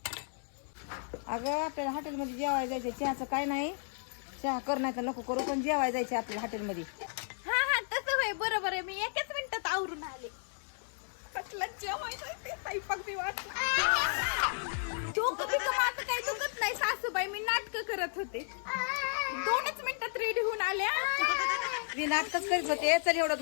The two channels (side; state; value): right; silent; digital silence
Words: अगं आपल्याला हॉटेलमध्ये जेवायला जायचं, चहाचं काय नाही. चहा कर नाही तर नको करू, पण जेवायला जायचं आपल्याला हॉटेलमध्ये. हा हा तसं होय, बरोबर आहे. मी एकाच मिनिटात आवरून आले. कसलं जेवायचं ते स्वयंपाक बी डोकं बिकं माझं काही दुखत नाही सासूबाई, मी नाटकं करत होते. 2च मिनिटात रेडी होऊन आल्या. मी नाटकच करीत होते. चल एवढं